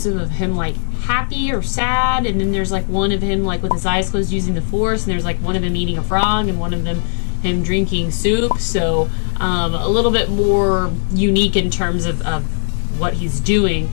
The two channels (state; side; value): silent; right; digital silence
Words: of him like happy or sad, and then there's like one of him like with his eyes closed using the Force, and there's like one of him eating a frog and one of them him drinking soup. So a little bit more unique in terms of what he's doing,